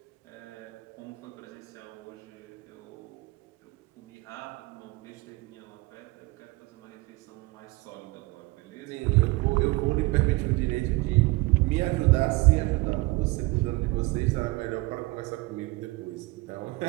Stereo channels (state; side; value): quieter; left; 23.4 dB